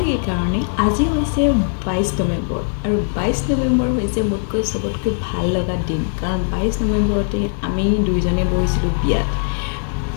এই কাৰণে আজি হৈছে 22 নৱেম্বৰ আৰু 22 নৱেম্বৰ হৈছে মোতকৈ সবতকৈ ভাল লগা দিন কাৰণ 22 নৱেম্বৰতে আমি দুইজনে বহিছিলোঁ বিয়াত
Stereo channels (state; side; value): silent; right; digital silence